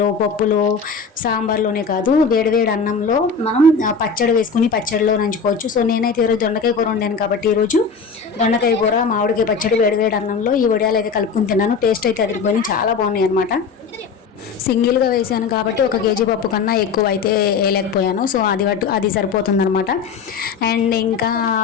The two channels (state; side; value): quieter; right; 5.4 dB